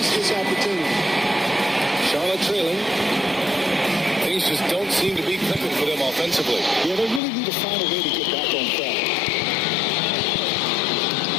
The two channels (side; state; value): right; drops out; at 7.2 s